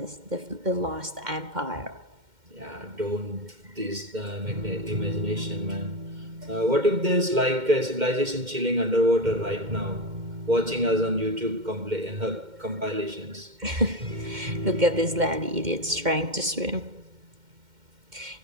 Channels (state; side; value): late; left; 2.1 ms